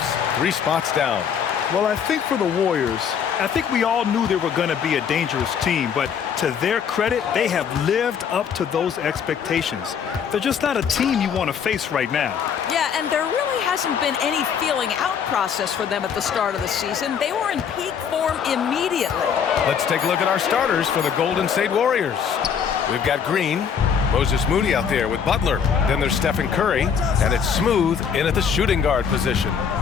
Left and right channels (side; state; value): right; quieter; 7.3 dB